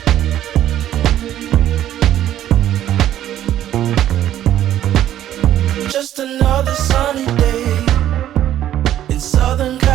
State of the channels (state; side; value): quieter; left; 12.0 dB